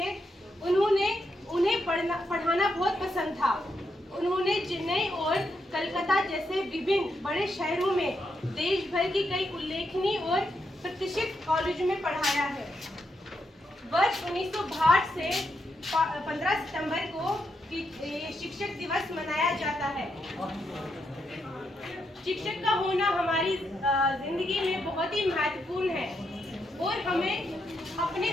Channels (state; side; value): normal; both; correlation 0.81